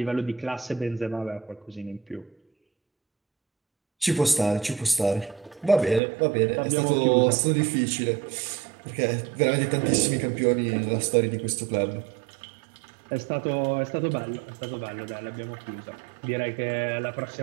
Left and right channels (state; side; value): drops out; left; at 6.0 s